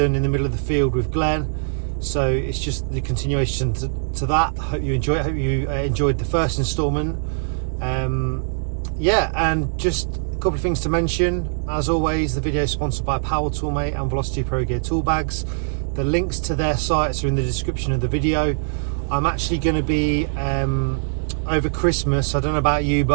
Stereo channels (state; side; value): silent; left; digital silence